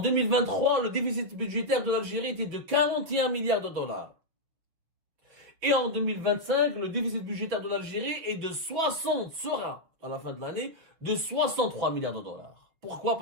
le déficit budgétaire de l'Algérie était de 41 milliards de dollars. Et en 2025, le déficit budgétaire de l'Algérie est sera, à la fin de l'année, de 63 milliards de dollars. Pourquoi?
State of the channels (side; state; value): left; late; 6.4 ms